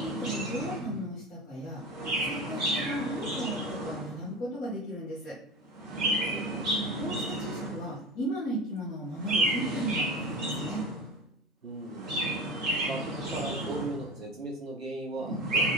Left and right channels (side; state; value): both; normal; correlation 0.30